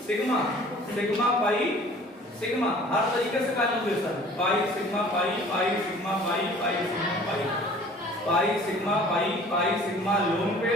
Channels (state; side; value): normal; both; correlation 0.49